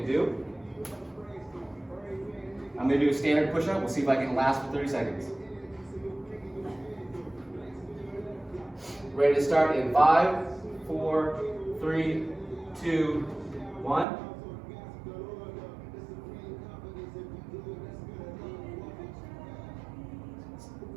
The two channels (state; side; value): drops out; left; at 14.1 s